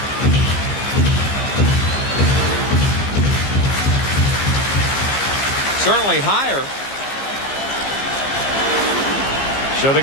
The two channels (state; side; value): late; right; 15 ms